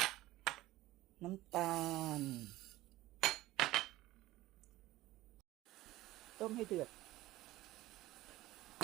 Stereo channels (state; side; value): quieter; left; 16.9 dB